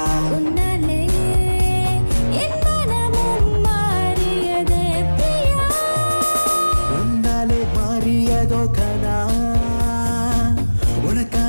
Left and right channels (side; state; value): both; inverted; correlation -1.00